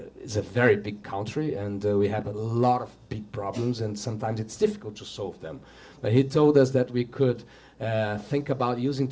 very big country, and we have a lot of big problems, and sometimes it's difficult to solve them. But he told us that we could think about using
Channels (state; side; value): identical; both; correlation 1.00